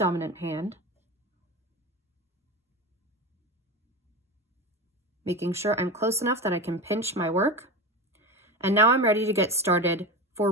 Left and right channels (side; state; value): both; normal; correlation 0.23